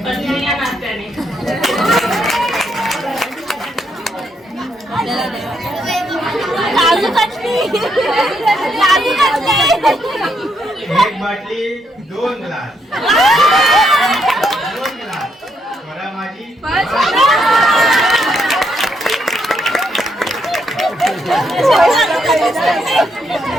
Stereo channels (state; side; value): normal; both; correlation 0.76